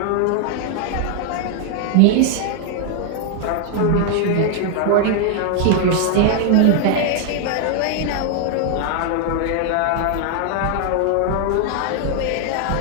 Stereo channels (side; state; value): both; different; correlation 0.00